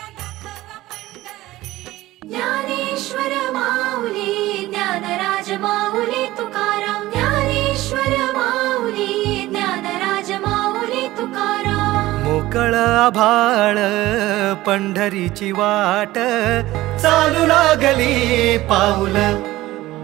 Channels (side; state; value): left; quieter; 17.0 dB